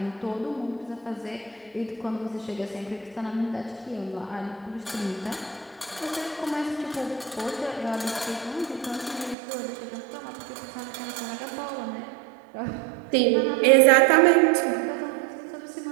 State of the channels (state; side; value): drops out; left; at 9.3 s